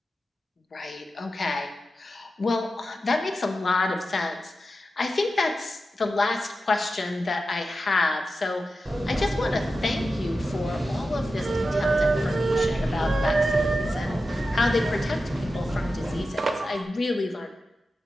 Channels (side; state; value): both; normal; correlation 0.92